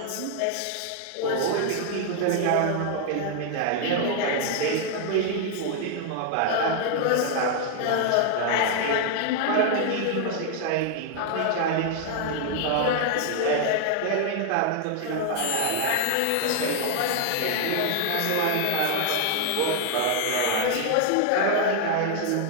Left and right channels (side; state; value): both; different; correlation 0.00